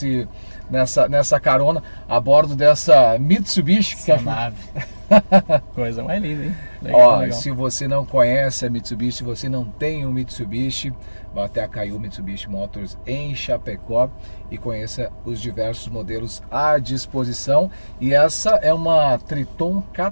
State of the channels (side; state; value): both; inverted; correlation -1.00